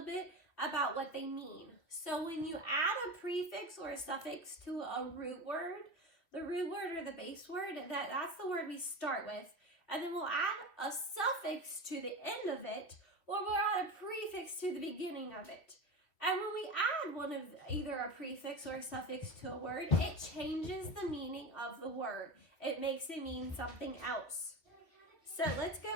bit about what they mean. So when you add a prefix or a suffix to a root word, the root word or the base word, that's the word we start with. And then we'll add a suffix to the end of it, or we'll add a prefix to the beginning of it. And when we add one of either a prefix or a suffix to a word, it changes the meaning of the word. It makes it mean something else. So let's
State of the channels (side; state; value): right; late; 3.4 ms